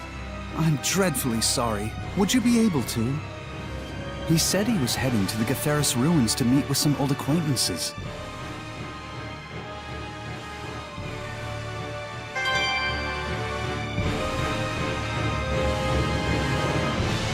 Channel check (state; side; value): identical; both; correlation 1.00